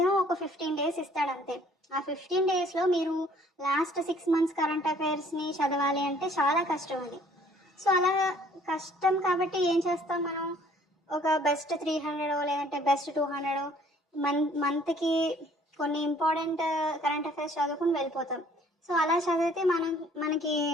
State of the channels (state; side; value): normal; both; correlation 0.58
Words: ఒక 15 days ఇస్తాడు అంతే. ఆ 15 daysలో మీరు లాస్ట్ 6 months కరెంట్ అఫైర్స్ని చదవాలి అంటే చాలా కష్టం అది. సో అలా కష్టం కాబట్టి ఏం చేస్తాం మనం, ఒక బెస్ట్ 300 లేదంటే బెస్ట్ 200 మంత్కి కొన్ని ఇంపార్టెంట్ కరెంట్ అఫైర్స్ చదువుకుని వెళ్ళిపోతాం. సో అలా చదివితే మనకి